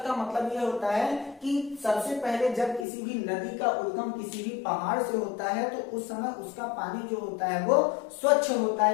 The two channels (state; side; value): drops out; right; at 2.9 s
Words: का मतलब यह होता है कि सबसे पहले जब किसी भी नदी का उद्गम किसी भी पहाड़ से होता है तो उस समय उसका पानी जो होता है वो स्वच्छ होता